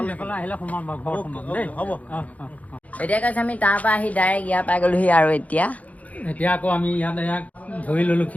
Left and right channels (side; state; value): right; late; 0.071 ms